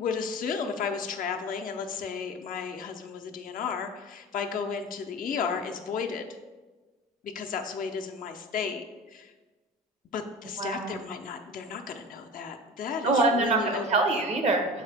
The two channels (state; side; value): normal; both; correlation 0.33